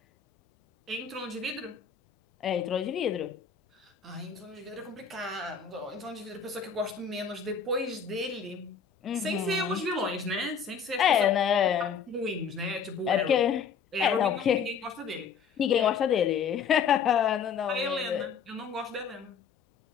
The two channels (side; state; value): right; quieter; 6.5 dB